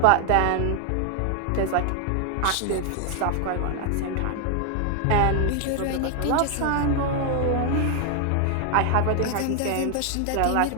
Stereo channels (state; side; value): different; both; correlation 0.00